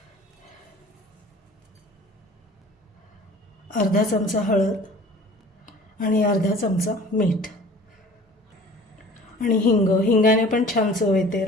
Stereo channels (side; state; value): both; normal; correlation 0.46